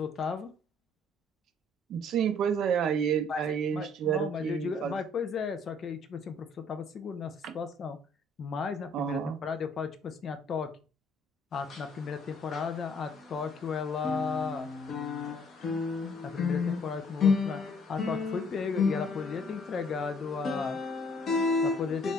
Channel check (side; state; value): both; normal; correlation 0.61